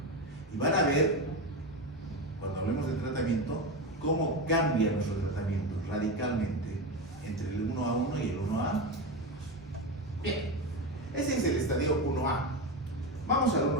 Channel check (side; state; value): both; normal; correlation 0.17